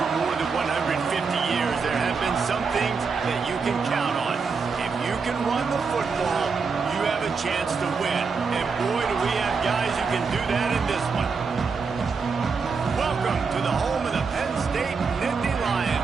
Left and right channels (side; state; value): left; quieter; 5.1 dB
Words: more than 150 years, there have been some things that you can count on. If you can run the football, you have a chance to win. And boy, do we have guys who can do that in this one. Welcome to the home of the Penn State Nittany